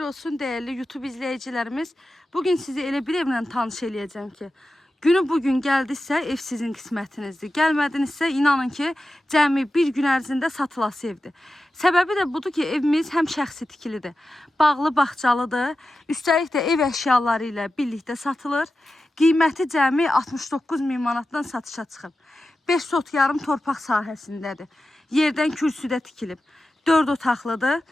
olsun değerli YouTube izleyicilerimiz. Bugün sizi elə bir evlə tanış eləyəcəm ki, günü bugün gəldisə ev sizin qismətinizdir. Gəlmədinizsə inanın ki, cəmi bir gün ərzində satılası evdir. Səbəbi də budur ki, evimiz həm şəxsi tikilidir, bağlı bağçalıdır. Üstəlik də ev əşyaları ilə birlikdə satılır. Qiyməti cəmi 69 min manatdan satışa çıxıb. 5 sot yarım torpaq sahəsindədir. Yerdən kürsüdə tikilib. 4 otaqlıdır.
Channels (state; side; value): normal; both; correlation 0.92